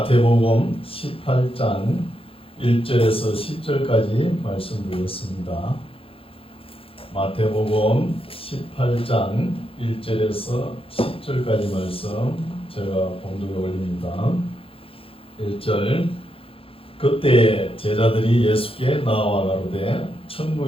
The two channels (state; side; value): late; right; 0.27 ms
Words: 18장 1절에서 10절까지 말씀드렸습니다. 마태복음 18장 1절에서 10절까지 말씀 제가 봉독에 올립니다. 1절 그때 제자들이 예수께 나와 가로되